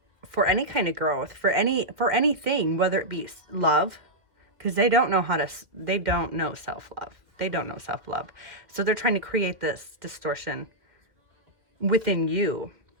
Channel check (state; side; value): late; left; 1.8 ms